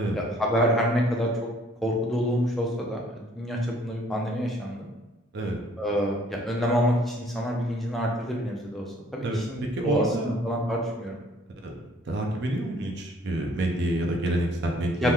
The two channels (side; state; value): both; normal; correlation 0.60